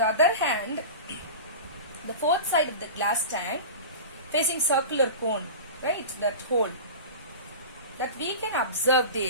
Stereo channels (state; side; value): inverted; both; correlation -0.31